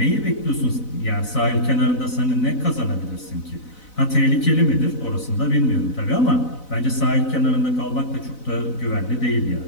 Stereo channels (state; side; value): late; right; 4.0 ms